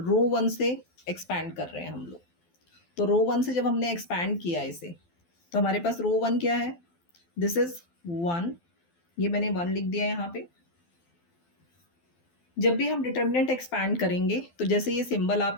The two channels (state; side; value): late; right; 12 ms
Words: one से एक्सपैंड कर रहे हैं हम लोग। तो रो वन से जब हमने एक्सपैंड किया इसे, तो हमारे पास रो वन क्या है, दिस इज 1, ये मैंने 1 लिख दिया यहाँ पे। जब भी हम डिटर्मिनेंट एक्सपैंड करेंगे तो जैसे ये सिंबल आप